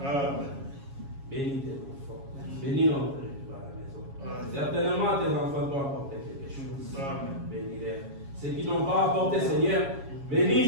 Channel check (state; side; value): late; left; 7.3 ms